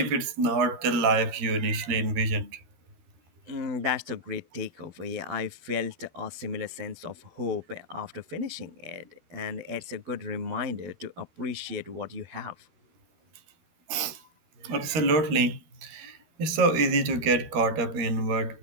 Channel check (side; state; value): left; late; 12 ms